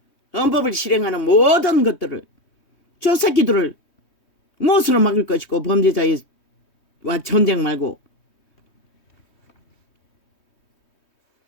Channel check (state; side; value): late; right; 3.2 ms